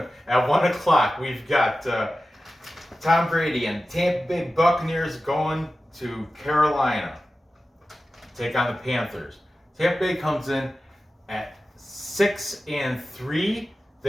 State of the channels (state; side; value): normal; both; correlation 0.94